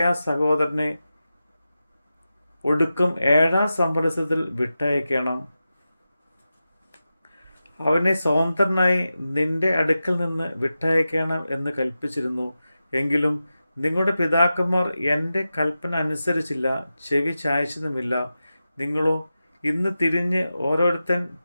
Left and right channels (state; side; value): inverted; both; correlation -0.92